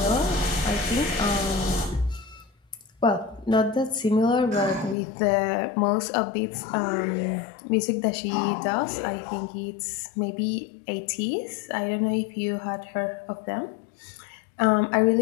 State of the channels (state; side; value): drops out; right; at 5.0 s